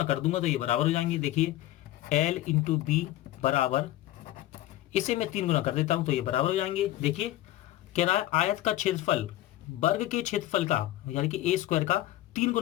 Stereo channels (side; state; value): right; quieter; 15.0 dB